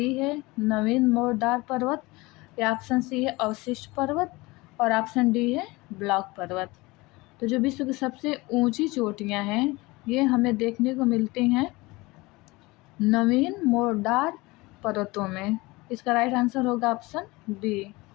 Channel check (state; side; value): quieter; right; 22.5 dB